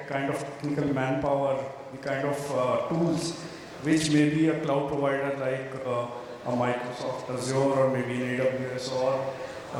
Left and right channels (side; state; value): both; identical; correlation 1.00